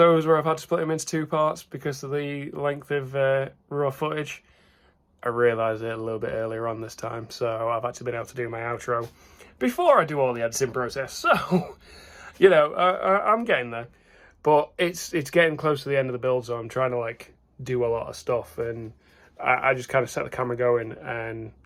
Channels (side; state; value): both; identical; correlation 1.00